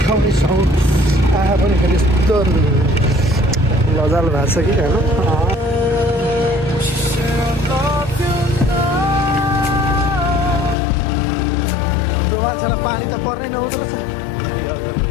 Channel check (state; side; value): drops out; right; at 10.8 s